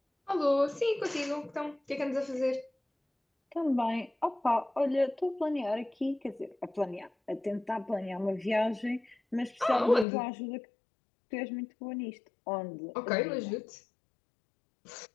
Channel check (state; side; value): drops out; right; at 10.1 s